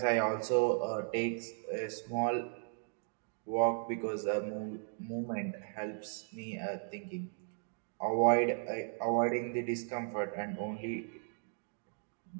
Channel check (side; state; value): left; silent; 54 dB below the other